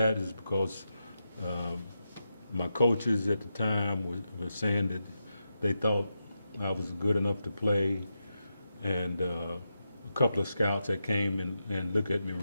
is because my coaches at the time were saying that they thought I was good enough to play, and a couple of scouts that came and looked at me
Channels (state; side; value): inverted; both; correlation -0.87